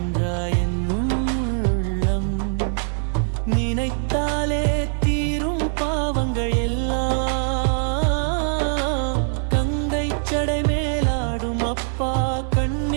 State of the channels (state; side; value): silent; left; 60 dB below the other